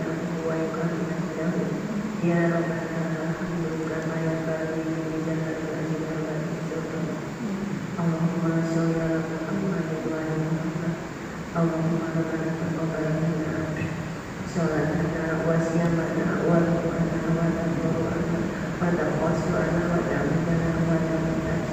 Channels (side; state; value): both; identical; correlation 1.00